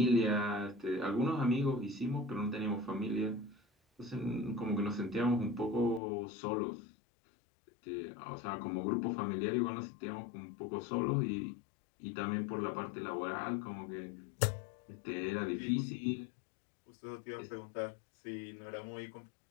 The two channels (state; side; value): drops out; right; at 6.0 s